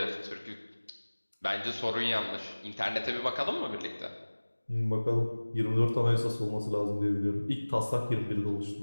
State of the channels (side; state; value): both; inverted; correlation -1.00